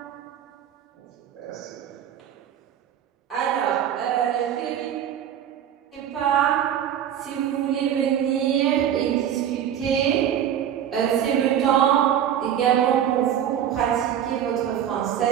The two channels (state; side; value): quieter; left; 9.8 dB